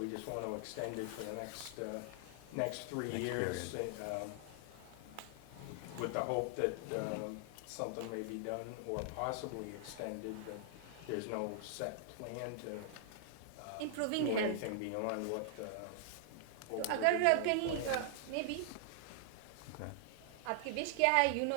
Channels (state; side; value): different; both; correlation 0.00